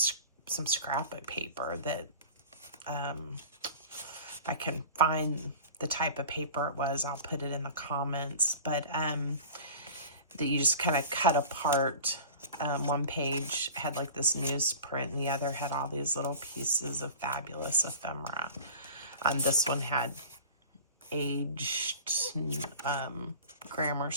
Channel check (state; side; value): inverted; both; correlation -0.38